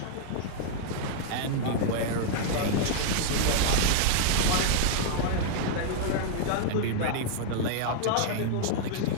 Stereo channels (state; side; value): different; both; correlation -0.01